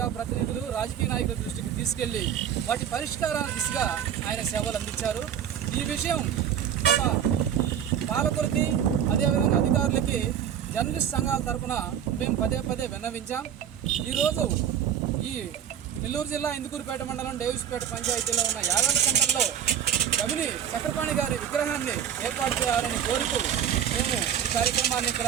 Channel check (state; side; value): quieter; left; 9.1 dB